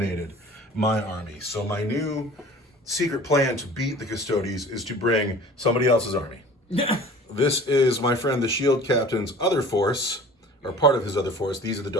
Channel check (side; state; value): both; normal; correlation 0.44